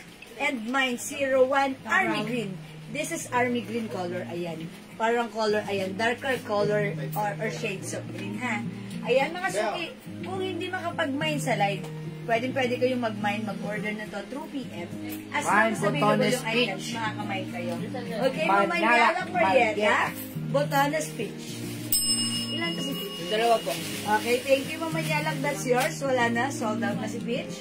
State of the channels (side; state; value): both; identical; correlation 1.00